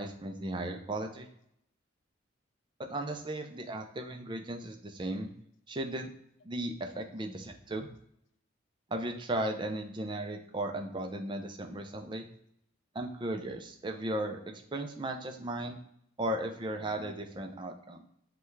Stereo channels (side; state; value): both; normal; correlation 0.41